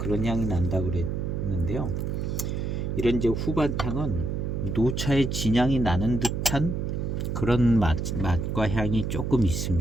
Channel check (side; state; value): right; noise; hum, 2 dB below the sound